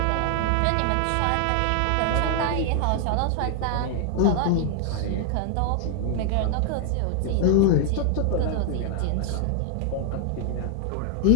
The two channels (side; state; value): both; different; correlation 0.00